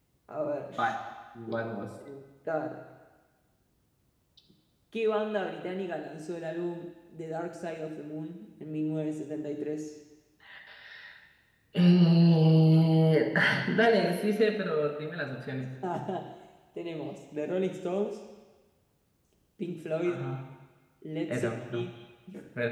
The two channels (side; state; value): both; identical; correlation 1.00